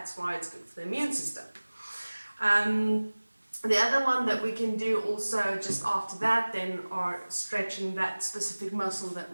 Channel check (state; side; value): inverted; both; correlation -1.00